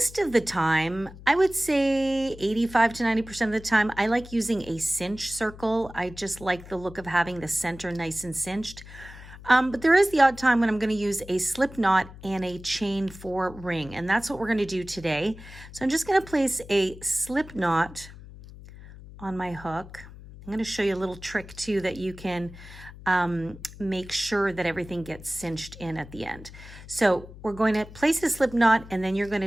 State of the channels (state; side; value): noise; left; hum, 17 dB below the sound